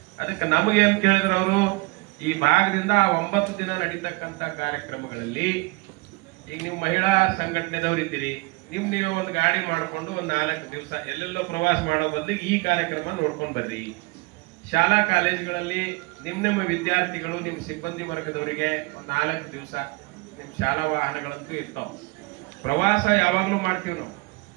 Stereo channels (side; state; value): left; quieter; 26.4 dB